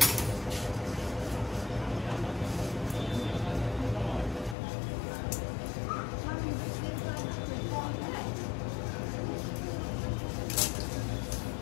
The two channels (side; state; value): right; drops out; at 4.5 s